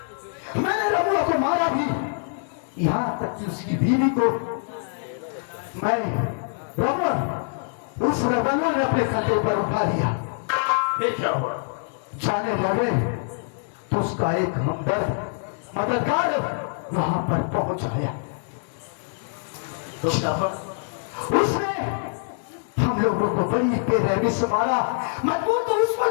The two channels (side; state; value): right; silent; 62 dB below the other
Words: मैंने रमुआ को मारा भी, यहाँ तक कि उसकी बीवी को मैं रमुआ उस रवाना ने अपने कंधे पर उठा लिया। फिर क्या हुआ? जाने लगे तो उसका एक हमदर्द मददगार वहां पर पहुंच आया। तो उसने हम लोगों को बड़ी बेरहमी से मारा। मजबूर तो उस